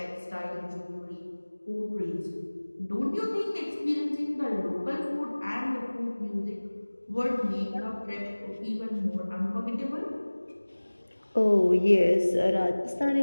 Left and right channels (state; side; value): inverted; both; correlation -1.00